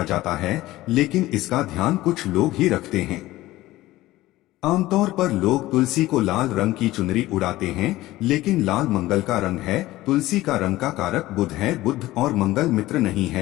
जाता है लेकिन इसका ध्यान कुछ लोग ही रखते हैं। आमतौर पर लोग तुलसी को लाल रंग की चुनरी उड़ाते हैं, लेकिन लाल मंगल का रंग है। तुलसी का रंग का कारक बुध है, बुध और मंगल मित्र नहीं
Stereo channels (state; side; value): quieter; right; 17.0 dB